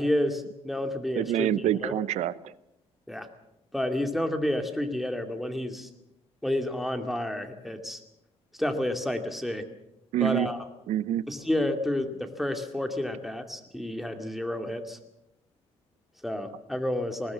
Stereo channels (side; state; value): both; normal; correlation 0.73